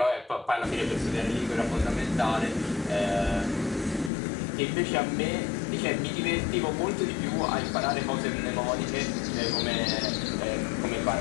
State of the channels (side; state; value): right; drops out; at 4.1 s